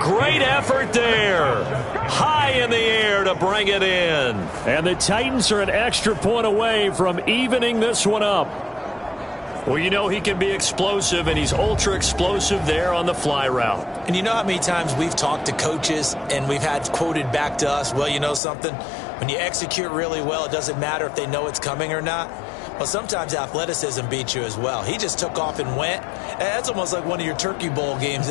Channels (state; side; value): drops out; right; at 18.4 s